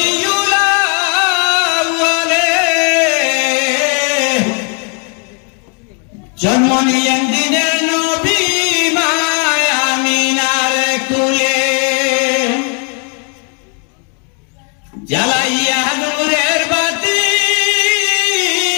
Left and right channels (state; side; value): quieter; right; 38.8 dB